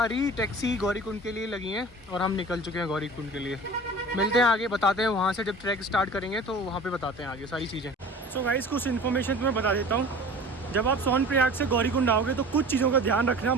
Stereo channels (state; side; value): normal; both; correlation 0.40